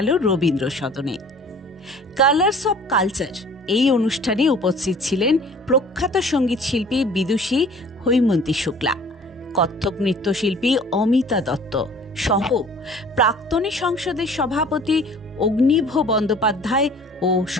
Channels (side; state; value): both; normal; correlation 0.50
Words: রবীন্দ্র সদনে। কালার্স অব কালচার এই অনুষ্ঠানে উপস্থিত ছিলেন প্রখ্যাত সঙ্গীত শিল্পী বিদুষী হৈমন্তী শুক্লা, কত্থক নৃত্যশিল্পী অমিতা দত্ত সহ প্রাক্তনী সংসদের সভাপতি অগ্নিভ বন্দ্যোপাধ্যায় ও